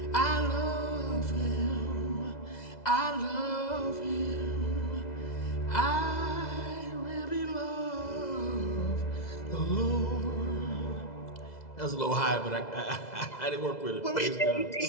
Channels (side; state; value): right; late; 2.0 ms